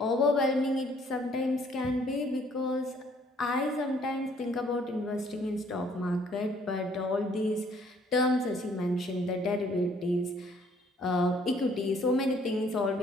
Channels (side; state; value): both; normal; correlation 0.62